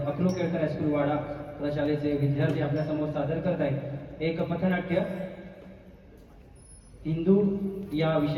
अकलू केळकर हायस्कूल वाडा प्रशालेचे विद्यार्थी आपल्या समोर सादर करत आहेत एक पथनाट्य. हिंदू या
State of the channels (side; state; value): both; identical; correlation 1.00